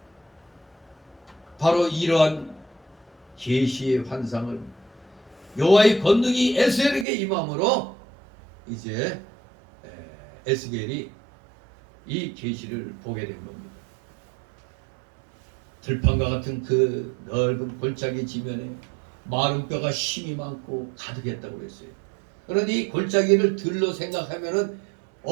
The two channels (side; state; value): left; drops out; at 7.1 s